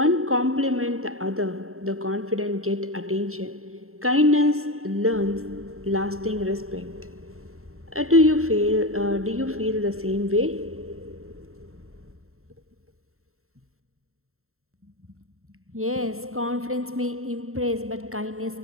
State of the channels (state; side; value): late; left; 0.63 ms